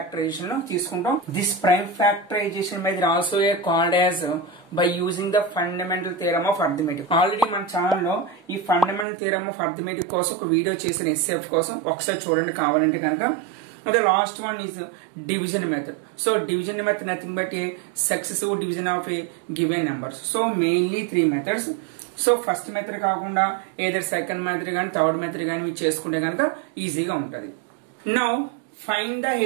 లో తీసుకుంటాం. This prime factorization method also called as by using the fundamental theorem of arithmetic. Already మన channel లో ఈ fundamental theorem of arithmetic కోసం ఒక వీడియో చేసిన HCF కోసం ఒకసారి చూడండి కావాలంటే కనుక. The last one is division method. So division method nothing but a successive division of a given numbers. So mainly three methods. So first method కాకుండా either second method గాని third method గాని చేసుకుంటే కనుక ఈజీగా ఉంటది. Now find the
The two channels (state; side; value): drops out; left; at 9.1 s